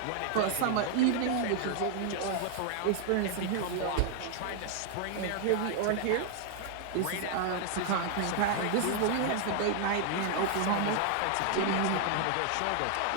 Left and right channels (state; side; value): different; both; correlation 0.00